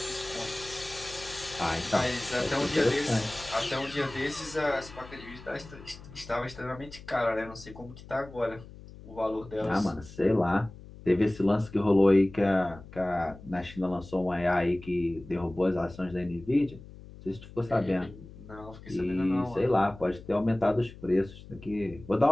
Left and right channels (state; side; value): noise; left; hum, 17 dB below the sound